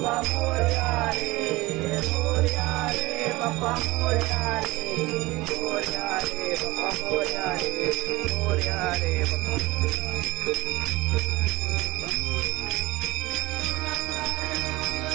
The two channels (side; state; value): left; quieter; 20.5 dB